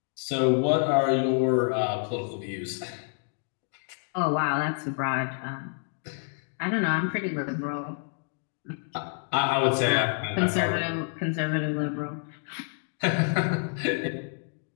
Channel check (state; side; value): silent; right; 57 dB below the other